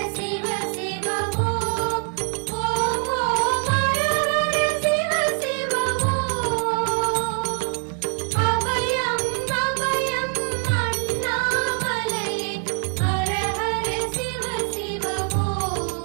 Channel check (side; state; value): left; quieter; 39.3 dB